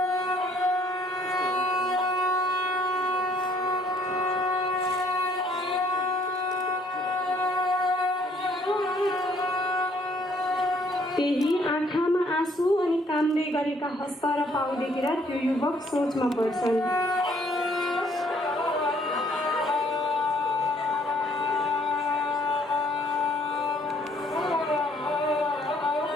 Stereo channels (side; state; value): both; normal; correlation 0.63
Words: त्यही आँखामा आँसु अनि कामदै गरेका हस्त र पाउ देखेर त्यो युवक सोचमा पर्छन्।